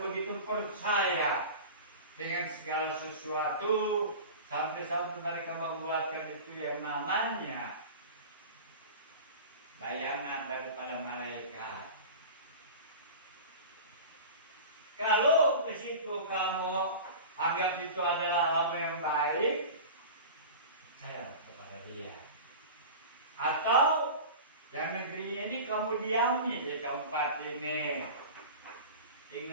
percaya dengan segala sesuatu, sampai-sampai mereka membuatkan itu yang namanya bayangan daripada malaikat. Kalau ke situ kamu ambil anggap itu adalah hal yang baik, percaya kepada dia. Atau yang negeri ini kamu diami di tempat ini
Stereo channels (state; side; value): inverted; both; correlation -0.34